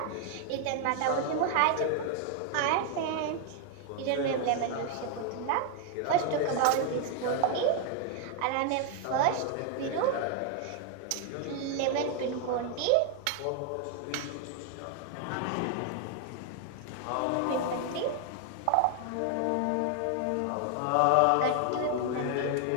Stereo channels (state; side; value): different; both; correlation 0.00